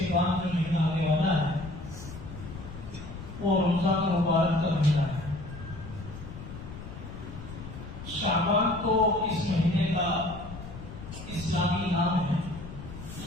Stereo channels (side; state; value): left; noise; rumble, 12 dB below the sound